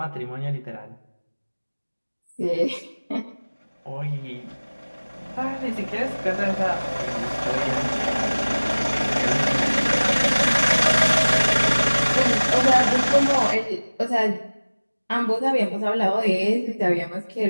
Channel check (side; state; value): both; inverted; correlation -1.00